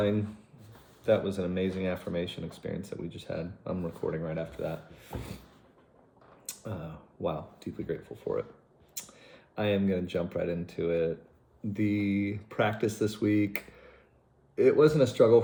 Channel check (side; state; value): both; identical; correlation 1.00